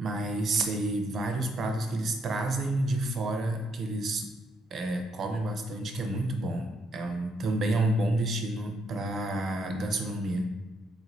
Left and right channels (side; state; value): both; normal; correlation 0.74